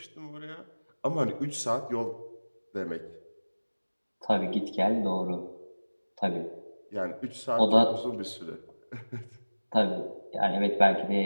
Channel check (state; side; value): inverted; both; correlation -1.00